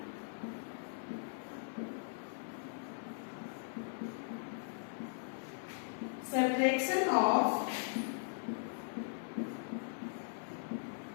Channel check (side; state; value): right; silent; digital silence